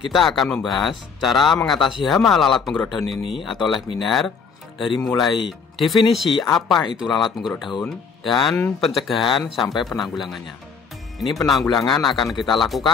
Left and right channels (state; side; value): quieter; right; 5.8 dB